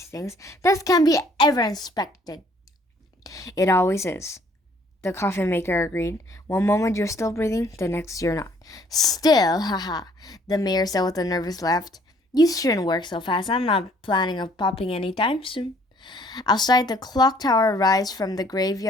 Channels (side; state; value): both; normal; correlation 0.60